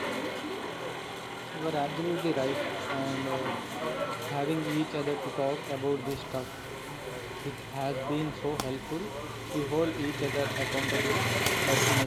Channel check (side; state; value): both; identical; correlation 1.00